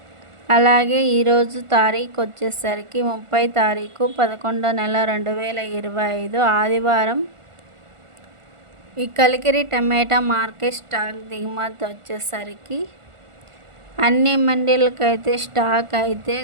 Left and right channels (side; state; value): left; late; 1.4 ms